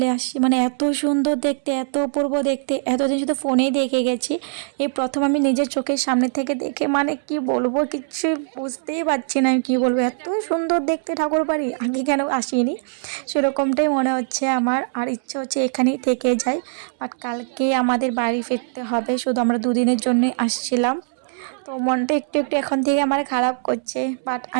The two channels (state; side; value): silent; left; 64 dB below the other